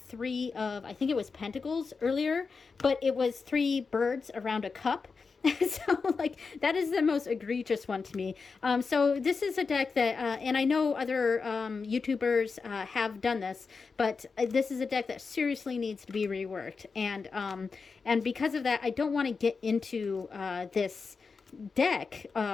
of, I think it was Pentacles earlier, but it was three birds around a cup. So like that is the most egregious one to me. So this is a deck that, and I know other YouTubers have done this, but this is a deck that seriously needs to be reworked. And because of that, I don't want to get into this deck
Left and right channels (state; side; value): quieter; right; 4.8 dB